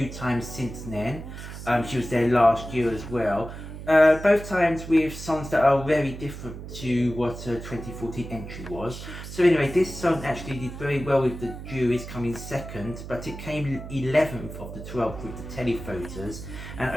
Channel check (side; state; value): right; noise; hum, 11 dB below the sound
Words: times since then. She was there last year as well. Both times with songs that are very different to what her 2014 entry was. So anyway, this song actually did very well with the juries coming second, but it came 11th of the 12th with the televoters, and